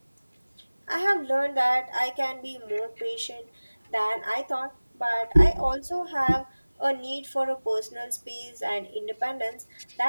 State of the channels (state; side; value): inverted; both; correlation -1.00